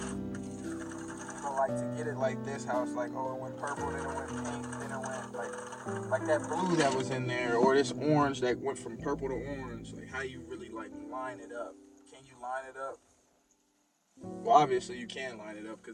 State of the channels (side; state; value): both; identical; correlation 1.00